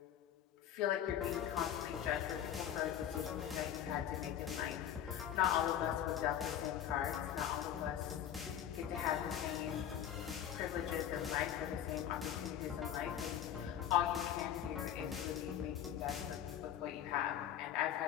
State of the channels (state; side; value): quieter; right; 10.2 dB